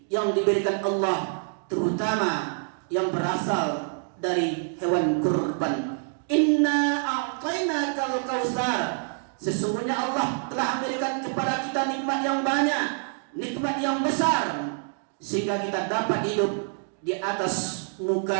yang diberikan Allah, terutama yang berasal dari hewan kurban. Inna a'tainakal kautsar. Sesungguhnya Allah telah memberikan kepada kita nikmat yang banyak, nikmat yang besar, sehingga kita dapat hidup di atas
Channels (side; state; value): left; silent; 61 dB below the other